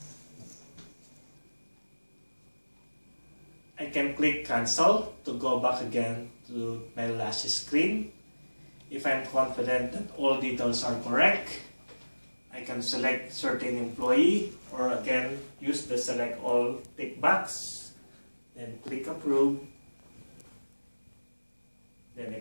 I can click cancel to go back again to my last screen. If I'm confident that all details are correct, I can select certain employee or again use the select all tick box. Then click approve. Then I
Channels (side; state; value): both; inverted; correlation -1.00